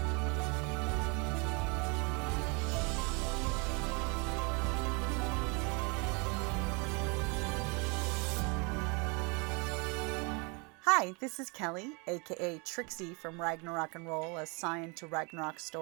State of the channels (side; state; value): left; quieter; 31.2 dB